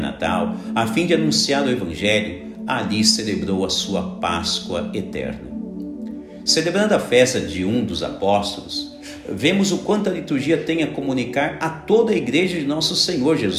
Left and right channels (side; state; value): both; identical; correlation 1.00